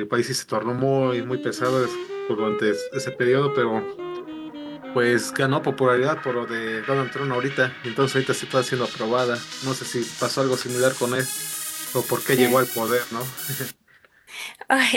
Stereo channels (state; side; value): identical; both; correlation 1.00